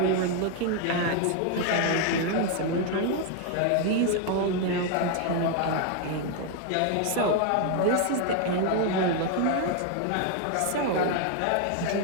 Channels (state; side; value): different; both; correlation 0.01